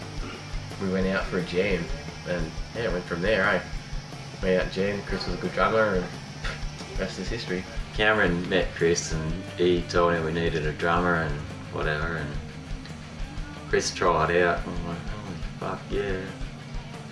we went out for a jam, and went from there. Went out and jammed. Chris was a good drummer, and rest is history. Cameron met Chris and he told him we needed a drummer and whatever, and Chris tried out. I'm like, oh fuck yeah,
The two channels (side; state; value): both; identical; correlation 1.00